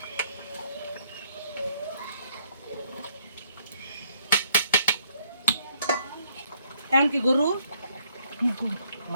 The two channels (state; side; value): inverted; both; correlation -0.67